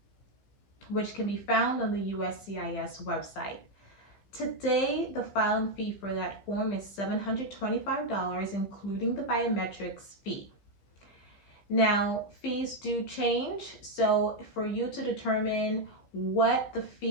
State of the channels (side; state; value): right; late; 15 ms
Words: which can be found on the USCIS website. Today, the filing fee for that form is $725, including the biometrics fee. Now, fees do change, so for you to determine what the